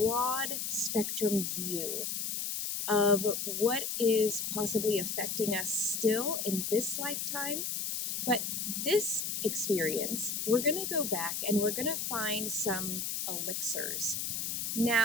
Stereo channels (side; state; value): left; noise; hiss, 2 dB below the sound